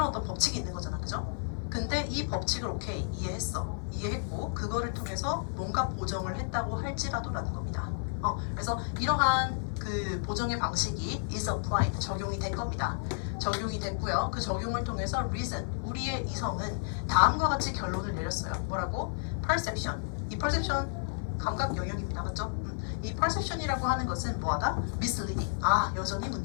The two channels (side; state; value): right; silent; 57 dB below the other